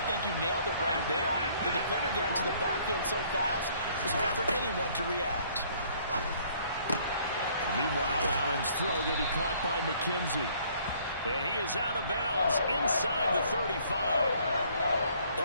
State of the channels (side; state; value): both; inverted; correlation -0.61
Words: think you nailed it right there. The defender got into the backfield so fast, it's hard for anyone to react. Meanwhile, Allen's throw going to be caught by McKenzie. And he is out of bounds inside the 35.